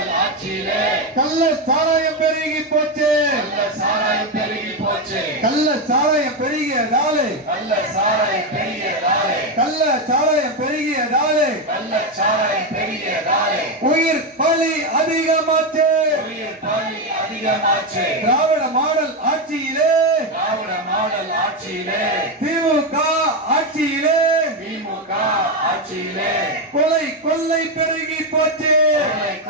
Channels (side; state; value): both; normal; correlation 0.09